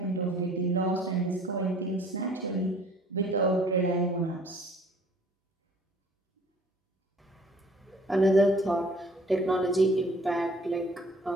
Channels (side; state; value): both; normal; correlation 0.54